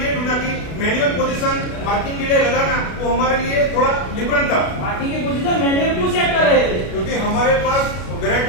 ये ढूंढा कि मैनुअल पोजीशन मार्किंग के लिए लगाना वो हमारे लिए थोड़ा डिफरेंट था। मार्किंग की पोजीशन मैन्युअल क्यों सेट कर रहे थे? क्योंकि हमारे पास वैरायटी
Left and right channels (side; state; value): right; late; 32 ms